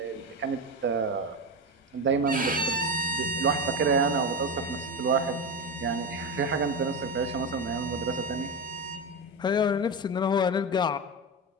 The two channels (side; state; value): both; normal; correlation 0.17